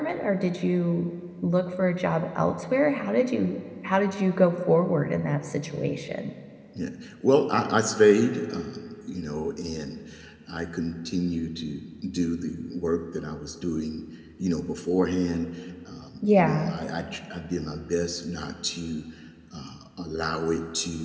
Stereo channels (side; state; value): both; identical; correlation 1.00